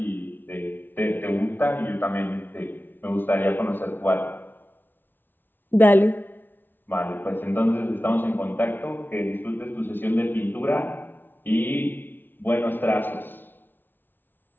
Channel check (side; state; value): right; late; 0.094 ms